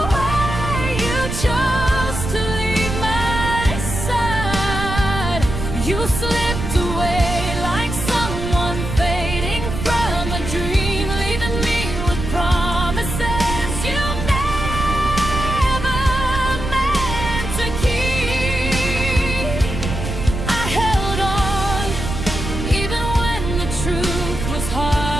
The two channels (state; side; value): noise; right; rumble, 5 dB below the sound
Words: way you chose to leave my side. You slipped away like someone fading from a dream, leaving me with promises you never meant to keep. I held on even when the truth was